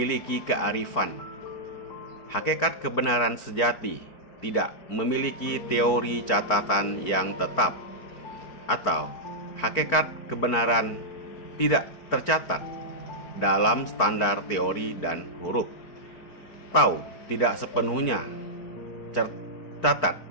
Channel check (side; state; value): right; late; 4.5 ms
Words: kearifan. Hakikat kebenaran sejati tidak memiliki teori catatan yang tetap, atau hakikat kebenaran tidak tercatat dalam standar teori dan huruf. atau tidak sepenuhnya